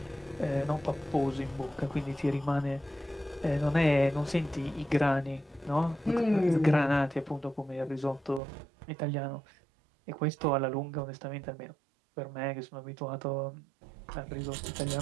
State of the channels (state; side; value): drops out; left; at 8.4 s